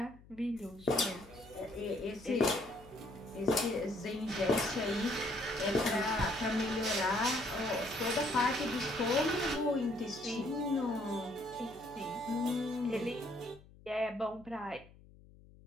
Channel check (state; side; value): noise; left; hum, 23 dB below the sound